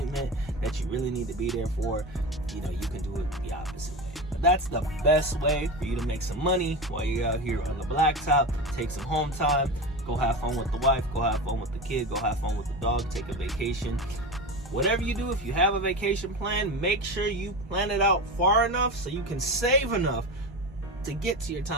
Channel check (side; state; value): both; normal; correlation 0.24